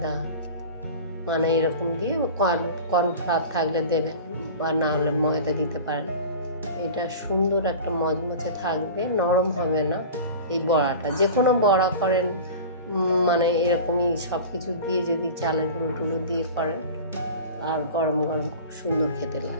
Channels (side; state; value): both; inverted; correlation -0.35